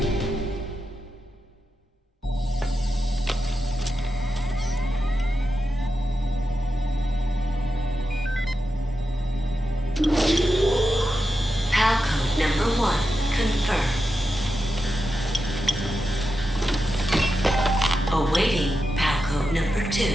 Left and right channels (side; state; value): both; normal; correlation 0.89